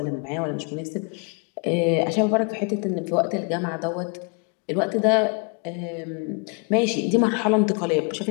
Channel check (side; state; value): right; quieter; 35.6 dB